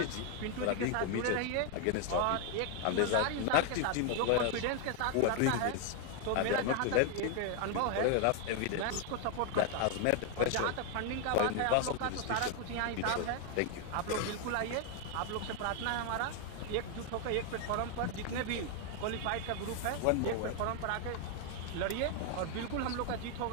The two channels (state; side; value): different; both; correlation 0.00